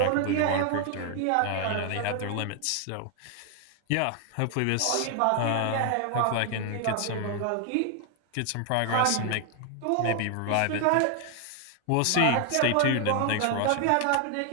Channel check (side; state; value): both; different; correlation 0.00